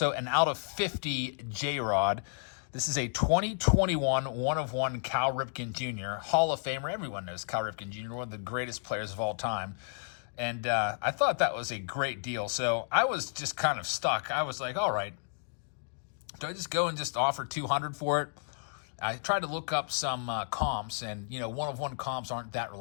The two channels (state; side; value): silent; right; digital silence